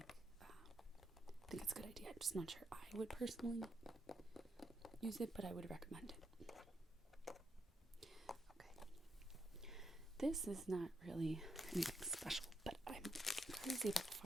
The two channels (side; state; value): both; normal; correlation 0.79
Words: think it's a good idea. I'm just not sure I would personally use it, but I would recommend it. Okay. This is not really anything special, but I'm crazy about